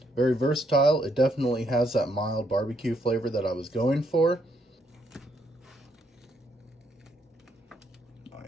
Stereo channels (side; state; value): both; normal; correlation 0.74